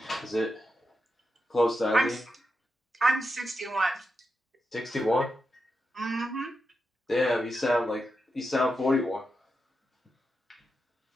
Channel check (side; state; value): both; normal; correlation 0.87